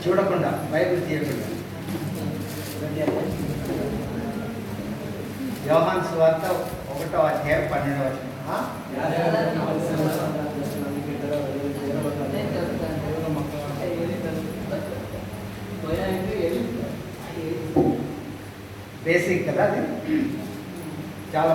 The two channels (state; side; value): identical; both; correlation 1.00